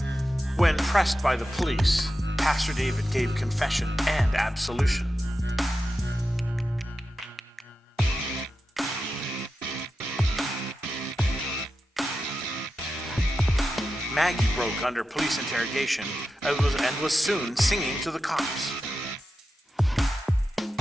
When pressed by the police, Pastor David gave confession and absolution. Maggie broke under police interrogation and was soon singing to the cops.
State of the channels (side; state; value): both; normal; correlation 0.91